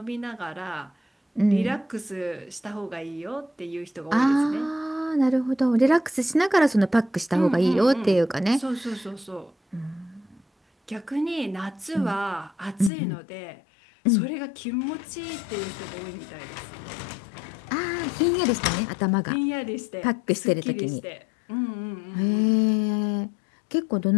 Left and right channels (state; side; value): drops out; right; at 12.9 s